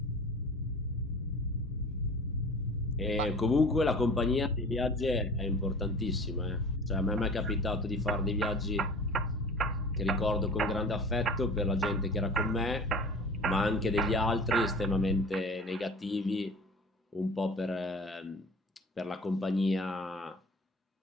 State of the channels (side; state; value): both; normal; correlation 0.41